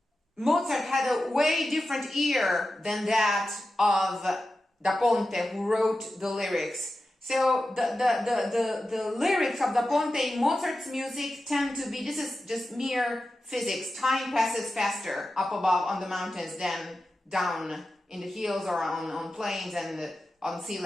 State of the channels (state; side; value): normal; both; correlation 0.92